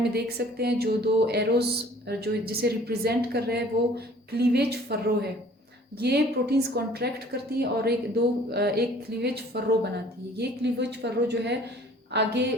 में देख सकते हैं। जो दो एरोज जो जिसे रिप्रेजेंट कर रहे हैं वो क्लीवेज फर्रो है। ये प्रोटीन्स कॉन्ट्रैक्ट करती है और एक क्लीवेज फर्रो बनाती है। ये क्लीवेज फर्रो जो है आगे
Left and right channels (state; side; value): normal; both; correlation 0.53